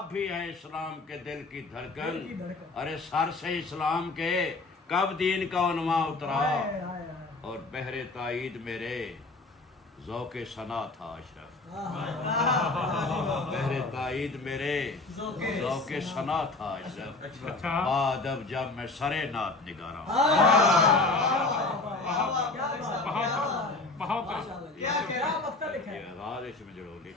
بھی ہے اسلام کے دل کی دھڑکن ارے سر سے اسلام کے کب دین کا عنوان اترا اور بہر تائید میرے ذوق ثنا تھا اشرف بہر تائید میرے ذوق ثنا تھا اشرف بعد اب جب میں سرے نعت نگارا بہت آغاز اس میں جڑو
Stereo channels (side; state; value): right; quieter; 3.4 dB